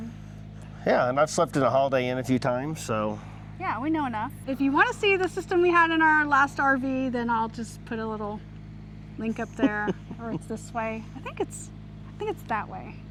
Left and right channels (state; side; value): identical; both; correlation 1.00